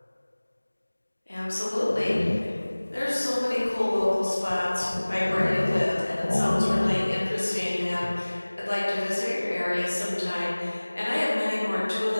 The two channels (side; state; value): both; inverted; correlation -1.00